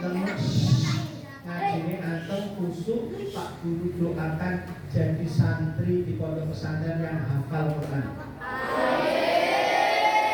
antum kusuk, Pak Guru doakan jadi santri di pondok pesantren yang hafal Quran.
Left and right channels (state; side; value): identical; both; correlation 1.00